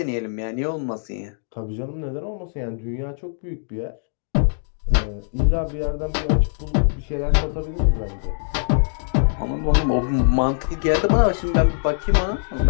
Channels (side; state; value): right; silent; digital silence